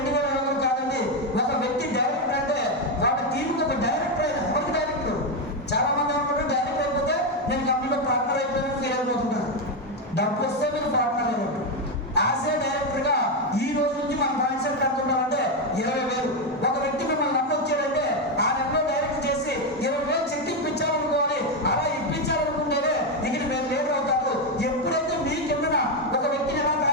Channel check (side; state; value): both; normal; correlation 0.07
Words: కాదండి. ఒక వ్యక్తి డైరెక్టర్ అంటే వాళ్ళ టీంకి ఒక డైరెక్టర్ అయినా ఎవరికి డైరెక్టర్? చాలా మంది అనుకుంటారు డైరెక్టర్ అయిపోతే నేను కంపెనీలో పార్ట్నర్ అయిపోయినా ఫీల్ అయిపోతుంటారు. డబ్బు వస్తే మీరు పార్ట్నర్ అయినట్టు. యాజ్ ఏ డైరెక్టర్ గా ఈ రోజు నుంచి మన మైండ్ సెట్ అనుకుంటామంటే 20,000. ఒక వ్యక్తి మిమ్మల్ని నమ్మి వచ్చాడంటే ఆ నెలలో డైరెక్ట్ చేసి 20,000 చెక్ ఇప్పించాలనుకోవాలి. అలా ఇప్పించాలనుకుంటేనే ఇక్కడ మీరు లీడర్ అవుతారు. ఎప్పుడైతే మీ కిందన ఒక వ్యక్తిని ఎలా